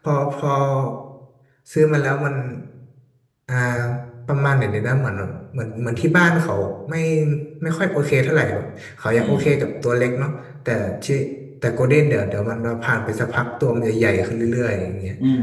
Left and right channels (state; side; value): identical; both; correlation 1.00